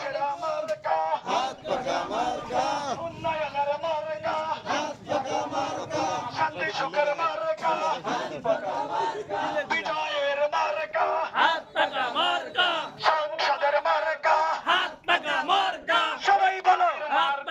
মার্কা উন্নয়নের মার্কা শান্তি সুখের মার্কা বিজয়ের মার্কা সংসদের মার্কা সবাই বলো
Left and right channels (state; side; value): identical; both; correlation 1.00